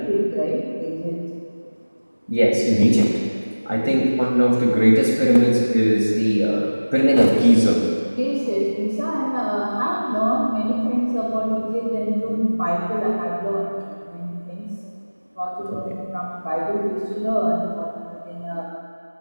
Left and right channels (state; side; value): inverted; both; correlation -1.00